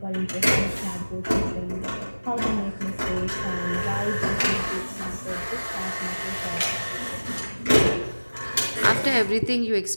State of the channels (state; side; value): inverted; both; correlation -1.00